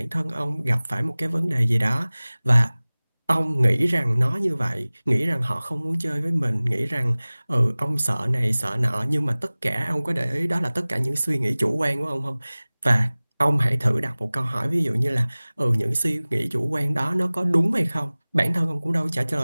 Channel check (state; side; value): inverted; both; correlation -0.99